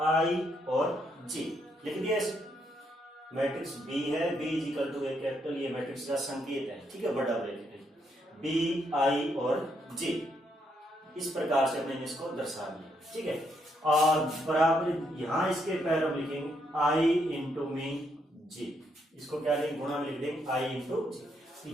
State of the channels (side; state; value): both; normal; correlation 0.76